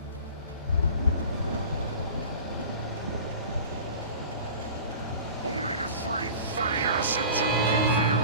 Only the three funny acids are good for your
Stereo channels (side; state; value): both; inverted; correlation -0.40